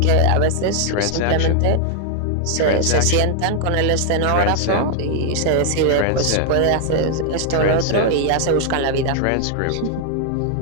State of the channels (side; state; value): both; different; correlation 0.00